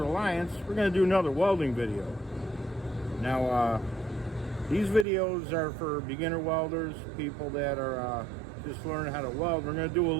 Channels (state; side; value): drops out; left; at 5.1 s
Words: We're going to do another welding video. Now, these videos are for beginner welders, people that are just learning how to weld. We're going to do a